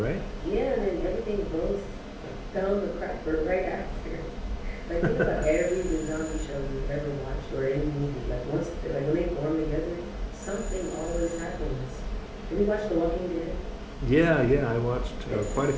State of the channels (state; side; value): identical; both; correlation 1.00